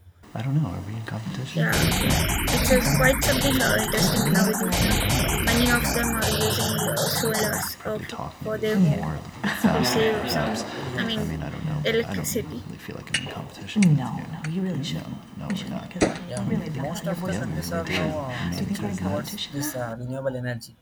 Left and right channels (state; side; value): identical; both; correlation 1.00